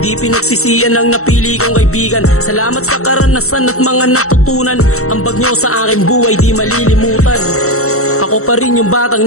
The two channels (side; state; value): right; late; 0.64 ms